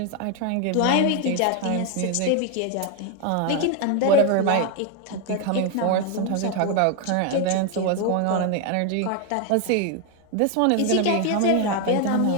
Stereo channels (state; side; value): different; both; correlation 0.01